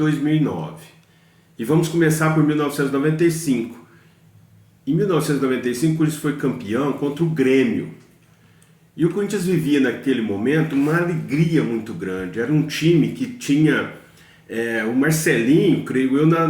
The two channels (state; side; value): identical; both; correlation 1.00